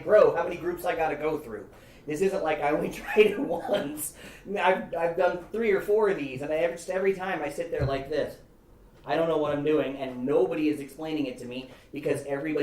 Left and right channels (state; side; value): identical; both; correlation 1.00